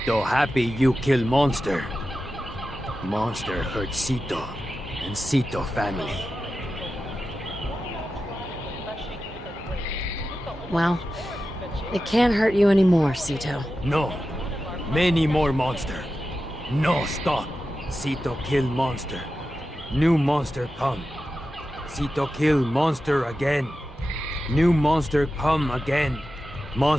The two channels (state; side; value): normal; both; correlation 0.92